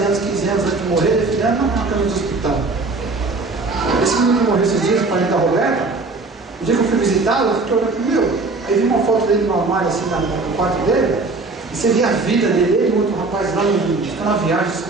anos, 15 anos antes de morrer, definindo na cama do hospital. Esse menino que morreu esses dias, o parente da Roberta, o dia que eu fui visitá-lo, eu fiquei olhando, meu, aí vi uma foto dele no armário, assim, no quarto dele, e você via a vida dele, ele e outro rapaz lá, ficando na viagem,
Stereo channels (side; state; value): left; quieter; 3.6 dB